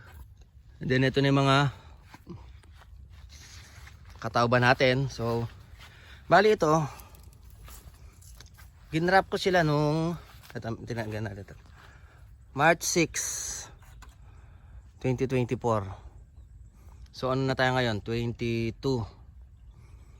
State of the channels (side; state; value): both; identical; correlation 1.00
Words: And then ito na yung mga katawba natin. So, bali ito, ginrap ko sila nung tinagan natin ito. March 6, 2024. So ano na tayo ngayon? 22.